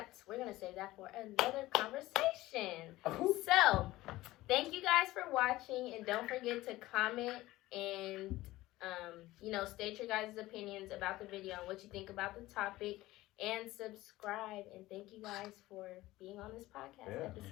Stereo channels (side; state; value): right; quieter; 17.5 dB